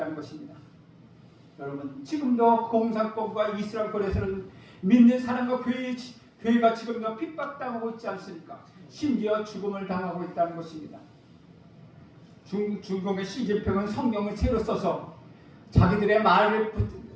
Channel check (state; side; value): identical; both; correlation 1.00